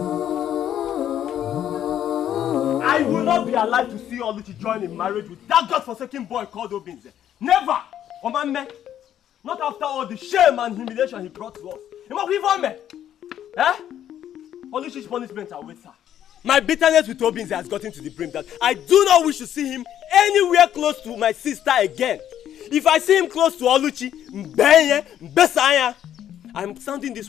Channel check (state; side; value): quieter; right; 10.6 dB